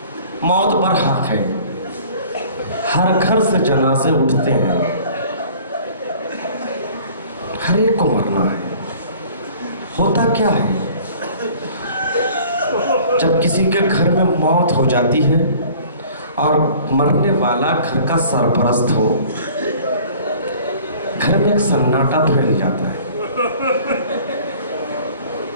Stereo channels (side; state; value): both; inverted; correlation -0.50